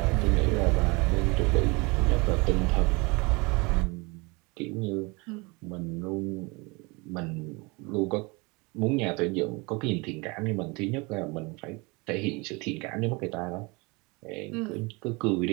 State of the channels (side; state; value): left; quieter; 27.2 dB